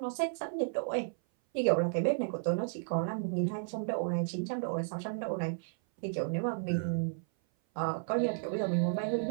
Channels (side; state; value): left; silent; 56 dB below the other